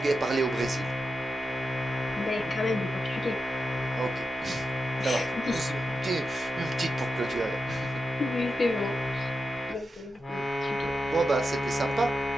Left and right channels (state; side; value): normal; both; correlation 0.88